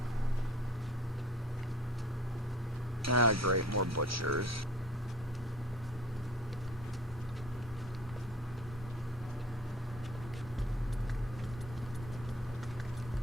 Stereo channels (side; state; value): both; normal; correlation 0.45